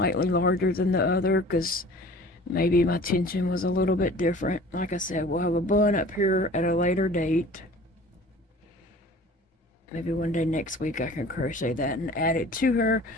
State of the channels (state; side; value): normal; both; correlation 0.45